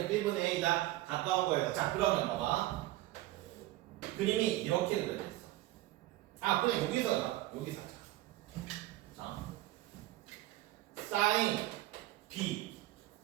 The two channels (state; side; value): quieter; left; 16.6 dB